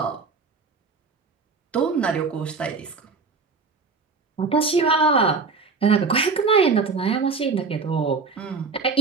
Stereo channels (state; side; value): quieter; left; 4.6 dB